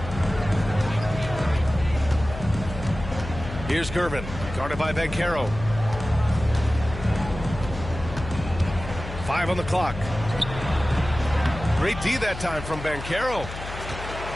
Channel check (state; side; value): noise; left; hum, 10 dB below the sound